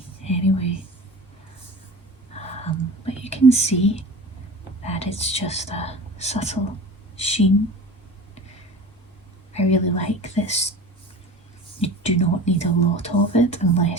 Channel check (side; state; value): both; normal; correlation 0.36